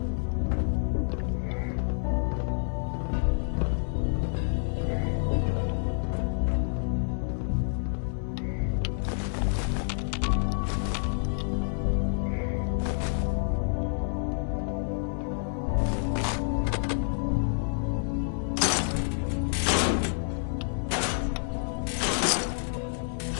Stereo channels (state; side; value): silent; right; 59 dB below the other